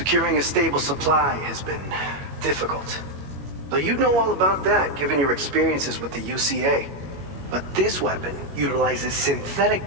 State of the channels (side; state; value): left; late; 21 ms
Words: a stable supply has been difficult. Though you'd know all about that, given your experiences with the UCA. But this weapon utilizes synthetic